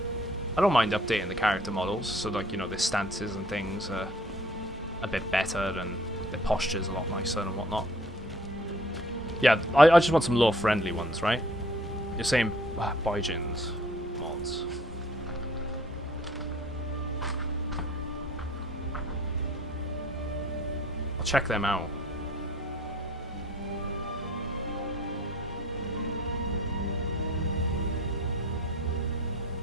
I don't mind updating the character models, so like, you know, their stances and things are a bit better, and their posture's a lot nicer and whatnot. Yeah, I just want some lore-friendly ones, right? You're saying Baijins mods. I'll check them out.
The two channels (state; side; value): normal; both; correlation 0.54